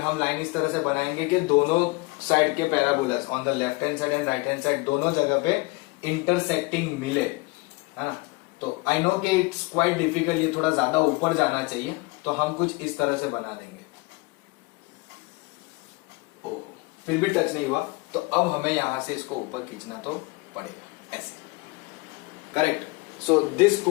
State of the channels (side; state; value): right; quieter; 25.1 dB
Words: हम लाइन इस तरह से बनाएंगे कि दोनों साइड के parabolas on the left hand side and right hand side दोनों जगह पे इंटरसेक्टिंग मिले, है ना। तो आई नो कि इट्स क्वाइट डिफिकल्ट, ये थोड़ा ज्यादा ऊपर जाना चाहिए, तो हम कुछ इस तरह से बना देंगे। ओ, फिर भी टच नहीं हुआ, तो अब हमें यहां से इसको ऊपर खींचना तो पड़ेगा ऐसे, correct. So this